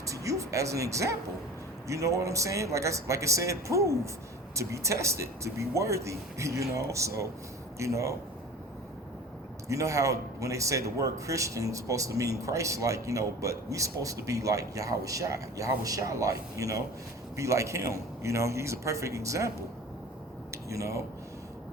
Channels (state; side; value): normal; both; correlation 0.39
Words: to you as an example. You know what I'm saying? Like I said, prove to be tested, to be worthy, So, how when they say the word Christian is supposed to mean Christ-like, but we supposed to be like Yahweh like, be like him, he's a perfect example,